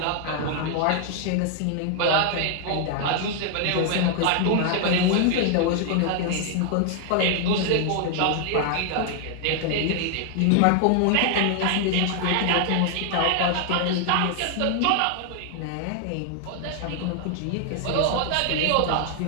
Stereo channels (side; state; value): both; different; correlation 0.00